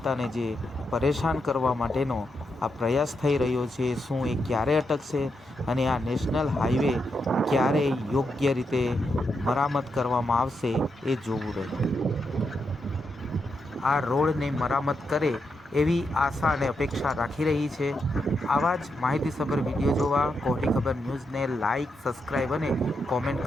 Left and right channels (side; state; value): both; normal; correlation 0.83